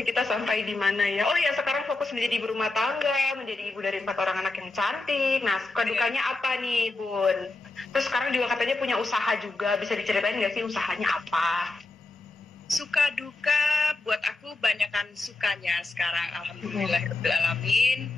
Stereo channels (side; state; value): right; quieter; 3.2 dB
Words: kita sampai di mana ya? Oh ya, sekarang fokus menjadi ibu rumah tangga, menjadi ibu dari 4 orang anak yang cantik. Nah, suka dukanya apa nih, Bun? Terus sekarang juga katanya punya usaha juga, bisa diceritain nggak sih usahanya apa? Suka duka buat aku banyakan sukanya sekarang, alhamdulillahirrahmanirrahim.